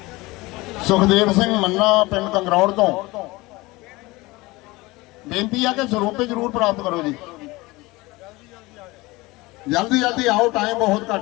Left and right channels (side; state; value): right; quieter; 21.7 dB